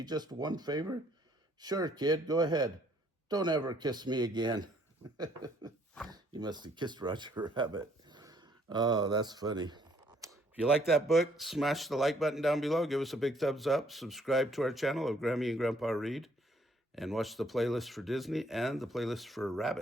just one favor? Sure, kid, go ahead. Don't ever kiss me again. You must have kissed Roger Rabbit. Oh, that's funny. If you like that book, smash the like button down below. Give us a big thumbs up. Subscribe to our channel of Grammy and Grandpa Read. And watch the playlist for Disney and the playlist for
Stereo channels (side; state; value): both; normal; correlation 0.65